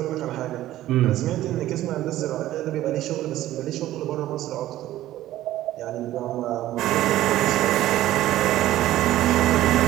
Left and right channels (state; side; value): quieter; left; 14.4 dB